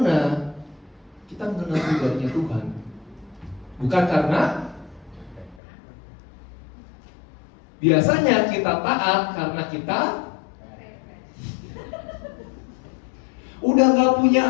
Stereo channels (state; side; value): drops out; right; at 5.6 s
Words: kita mengenal pribadinya Tuhan. Bukan karena biasanya kita taat karena kita udah gak punya